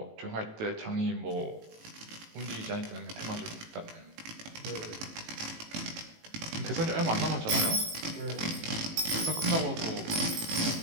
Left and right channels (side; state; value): left; late; 18 ms